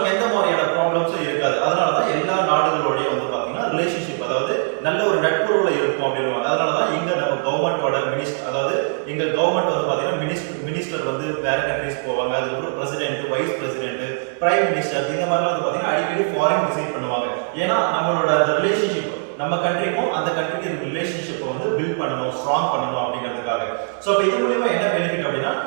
எந்த மாதிரியான ப்ராப்ளம்ஸும் இருக்காது. அதனாலதான் எல்லா நாடுகளோடய வந்து பாத்தீங்கன்னா ரிலேஷன்ஷிப், அதாவது நல்ல ஒரு நட்புறவுல இருக்கும் அப்படின்னுவாங்க. அதனாலதான் இங்க நம்ம கவர்மெண்டோட மினிஸ்டர், அதாவது இங்க கவர்மெண்ட் வந்து பாத்தீங்கன்னா மினிஸ்டர் வந்து வேற கண்ட்ரீஸ் போவாங்க, அதுக்கப்புறம் president, vice president, prime minister, இந்த மாதிரிலாம் வந்து பாத்தீங்கன்னா அடிக்கடி ஃபாரின் விசிட் பண்ணுவாங்க. ஏன்னா நம்மளோட அந்த ரிலேஷன்ஷிப், நம்ம கண்ட்ரிக்கும் அந்த கண்ட்ரிக்கு ரிலேஷன்ஷிப் வந்து பில்ட் பண்ணணும், ஸ்ட்ராங் பண்ணணும் அப்படிங்கிறதுக்காக. சோ அப்ப இது மூலமா என்ன பெனிஃபிட் அப்படின்னா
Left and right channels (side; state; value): left; silent; digital silence